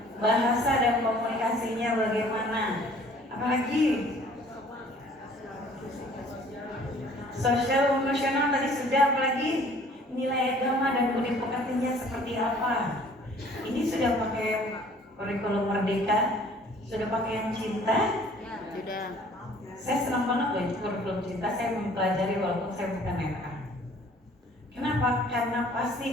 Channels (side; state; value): both; normal; correlation 0.54